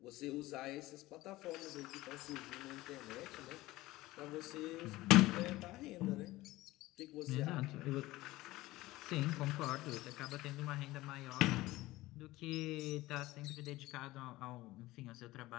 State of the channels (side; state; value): right; quieter; 18.3 dB